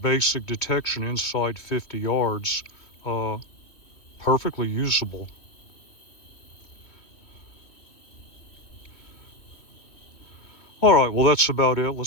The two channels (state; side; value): late; right; 3.1 ms